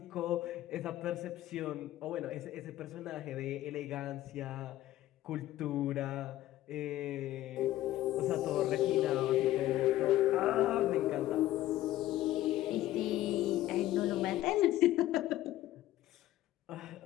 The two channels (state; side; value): quieter; right; 14.5 dB